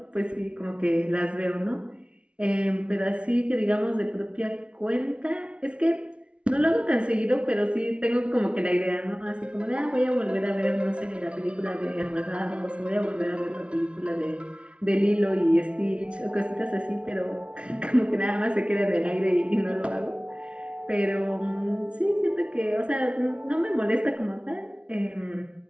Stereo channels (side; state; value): left; late; 0.060 ms